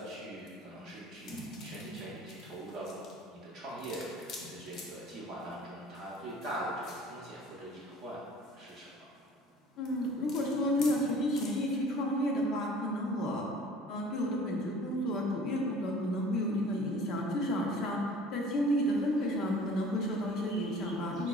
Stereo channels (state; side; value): normal; both; correlation 0.48